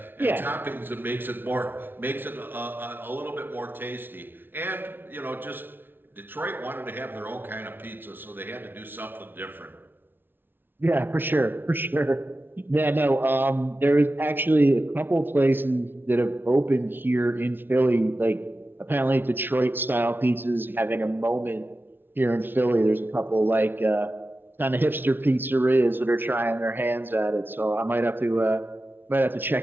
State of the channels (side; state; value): left; late; 0.10 ms